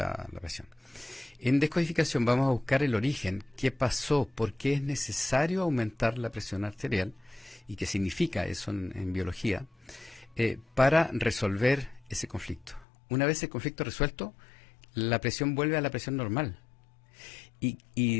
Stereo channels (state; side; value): drops out; right; at 12.9 s